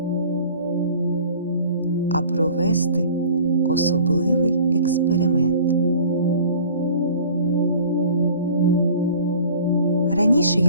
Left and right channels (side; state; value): both; inverted; correlation -0.47